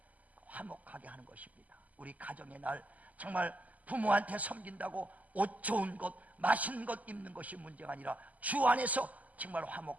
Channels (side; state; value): left; late; 0.076 ms